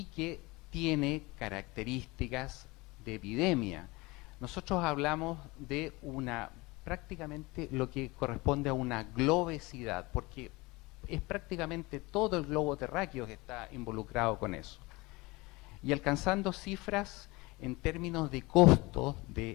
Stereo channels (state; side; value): quieter; right; 23.4 dB